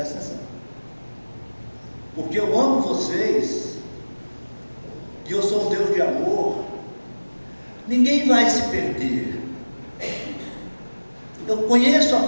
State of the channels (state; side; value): inverted; both; correlation -1.00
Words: atenção, porque eu amo vocês e eu sou um Deus de amor. Ninguém vai se perder. Eu conheço a